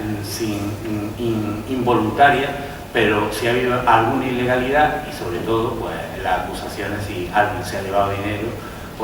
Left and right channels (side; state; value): both; identical; correlation 1.00